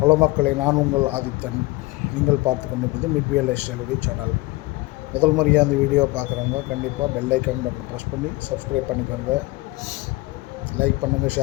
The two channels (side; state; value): right; quieter; 21.6 dB